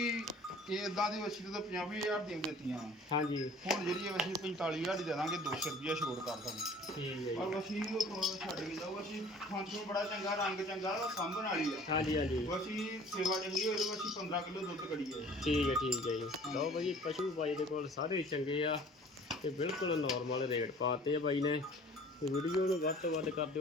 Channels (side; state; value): both; normal; correlation 0.49